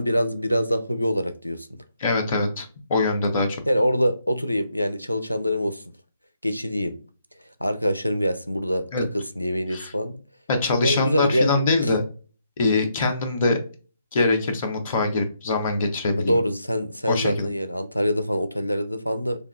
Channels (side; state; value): both; inverted; correlation -0.78